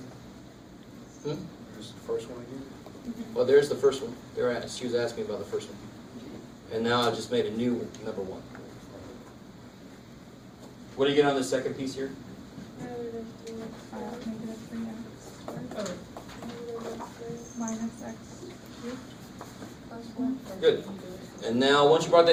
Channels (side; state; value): both; identical; correlation 1.00